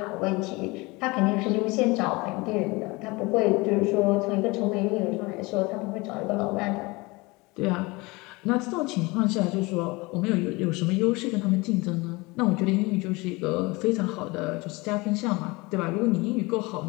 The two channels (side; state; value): right; quieter; 24.2 dB